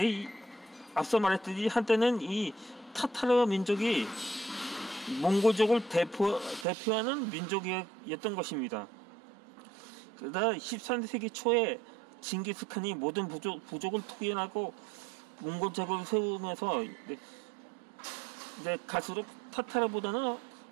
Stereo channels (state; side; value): drops out; left; at 6.7 s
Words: 앞서 말했듯이 한때는 이 타타르 민족이 몽골족을 대표하는 민족이었던 것입니다. 그러다 13세기 초에 징기스칸이 모든 부족을 투기하고 몽골제국을 세우면서 이제 갈수록 타타르보다는